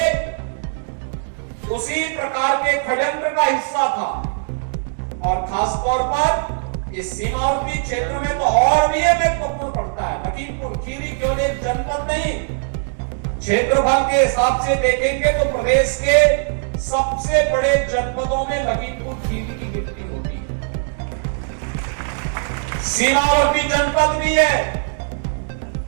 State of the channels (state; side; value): silent; left; digital silence